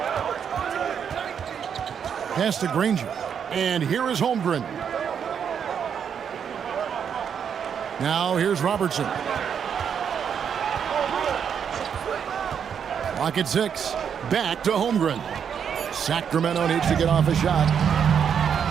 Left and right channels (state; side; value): quieter; left; 7.7 dB